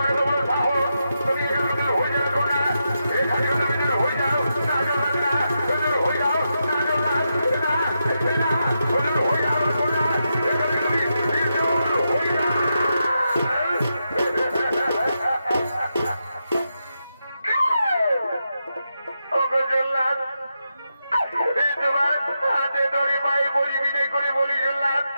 এত বড় সাহস, তুমি এখানে দূর হয়ে যাও না, এখানে তুমি দূর হয়ে যাও না জল্লাদ, না দূর হয়ে যাও না জল্লাদ, না না দূর হয়ে যাও না, এখানে তুমি দূর হয়ে যাও। তোমার হাতে ধরে পায়ে পরি বিনয় করে বলি জল্লাদ,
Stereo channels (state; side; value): inverted; both; correlation -0.86